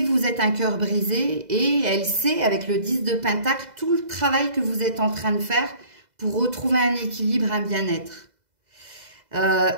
que vous êtes un cœur brisé et elle sait, avec le 10 de Pentacle, tout le travail que vous êtes en train de faire pour retrouver un équilibre, un bien-être.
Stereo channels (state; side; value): late; left; 2.0 ms